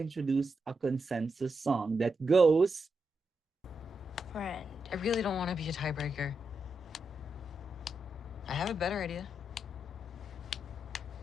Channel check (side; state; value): both; normal; correlation 0.85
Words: a consensus song that goes, Friend. I really don't want to be a tiebreaker. I have a better idea.